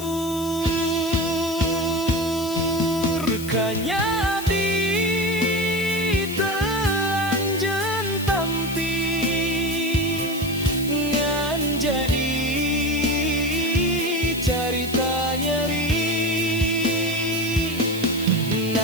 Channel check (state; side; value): noise; left; hiss, 12 dB below the sound